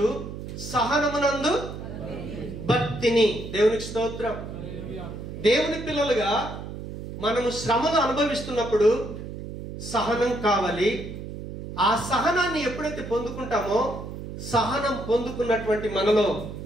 సహనమునందు భక్తిని. దేవునికి స్తోత్రం. దేవుని పిల్లలుగా మనము శ్రమను అనుభవిస్తున్నప్పుడు సహనం కావాలి. ఆ సహనాన్ని ఎప్పుడైతే పొందుకుంటామో సహనం పొందుకున్నటువంటి మనలో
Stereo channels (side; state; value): right; noise; hum, 9 dB below the sound